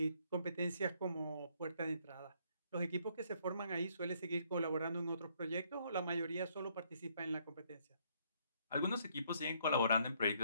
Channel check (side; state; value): both; inverted; correlation -0.68